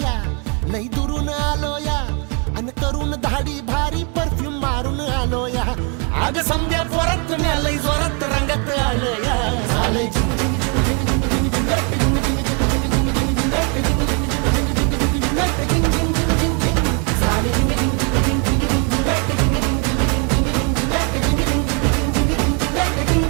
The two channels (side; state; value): left; quieter; 35.9 dB